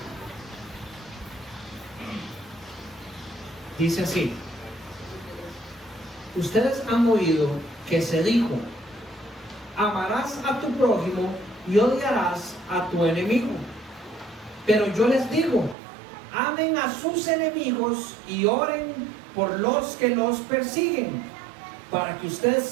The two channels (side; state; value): left; drops out; at 15.8 s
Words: Dice así: ustedes han oído que se dijo, amarás a tu prójimo y odiarás a tu enemigo. Pero yo les digo, amen a sus enemigos y oren por los que los persiguen, para que ustedes